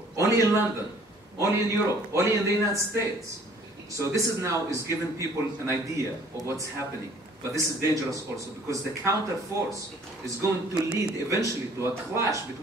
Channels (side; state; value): both; normal; correlation 0.55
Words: Only in London, only in Europe, only in the United States. So this is now giving people an idea of what's happening. But this is dangerous also because the counter force is going to lead eventually to a clash